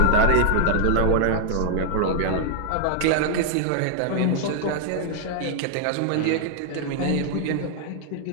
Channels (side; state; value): both; different; correlation 0.00